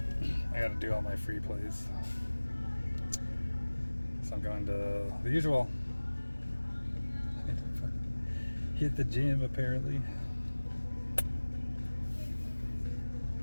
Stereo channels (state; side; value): inverted; both; correlation -1.00